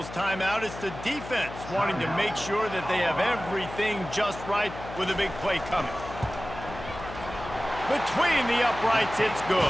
timeout. It's the defense wanting to make sure that they have everything just right with a big play coming. Between the uprights, it's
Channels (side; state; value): left; noise; hum, 12 dB below the sound